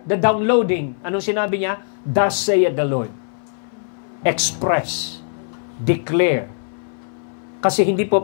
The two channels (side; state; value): right; silent; 60 dB below the other